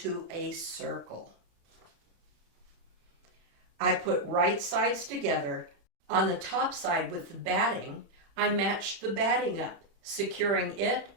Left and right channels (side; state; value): left; late; 36 ms